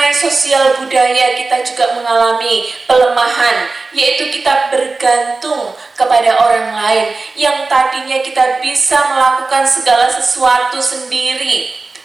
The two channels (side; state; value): left; quieter; 3.7 dB